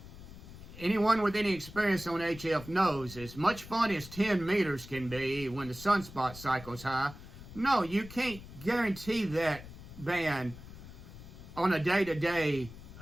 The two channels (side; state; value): left; noise; rumble, 15 dB below the sound